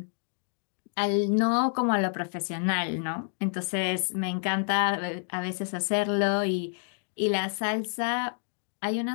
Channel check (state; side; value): silent; right; digital silence